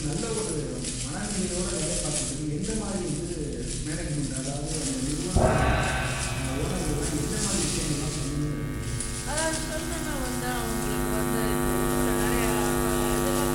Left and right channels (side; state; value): both; identical; correlation 1.00